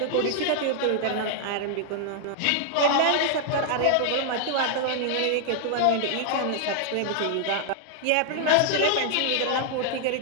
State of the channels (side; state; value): both; different; correlation -0.01